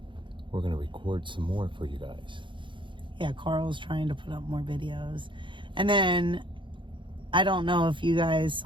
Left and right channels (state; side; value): late; left; 0.24 ms